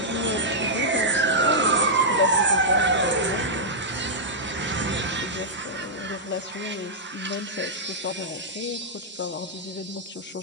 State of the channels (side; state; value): both; normal; correlation -0.09